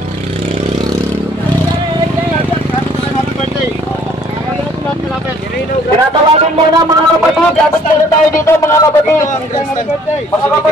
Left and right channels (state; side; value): normal; both; correlation 0.59